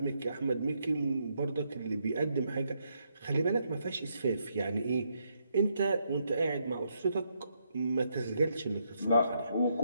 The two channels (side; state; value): both; inverted; correlation -0.77